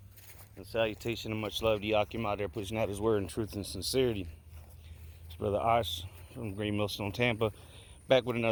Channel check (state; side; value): identical; both; correlation 1.00